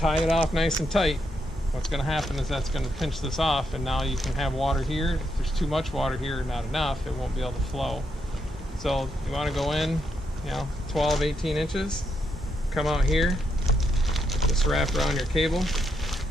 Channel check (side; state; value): both; normal; correlation 0.80